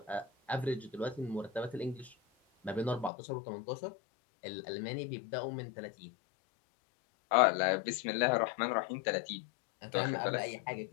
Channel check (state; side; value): drops out; right; at 3.1 s